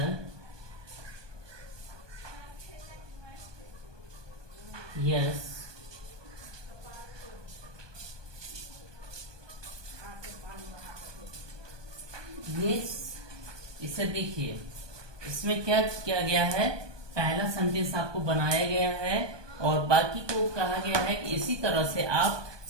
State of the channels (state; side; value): late; left; 1.2 ms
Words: yes इसे देखिए, इसमें क्या किया गया है, पहला सेंटेंस आपको बनाया गया है और बाकी को कहा गया है कि इसी तरह से आप